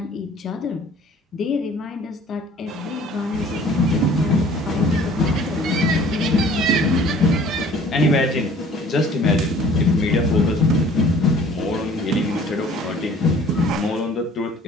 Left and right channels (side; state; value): both; normal; correlation 0.51